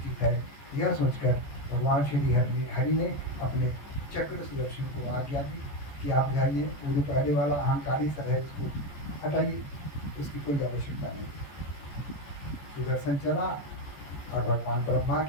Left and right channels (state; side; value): late; right; 14 ms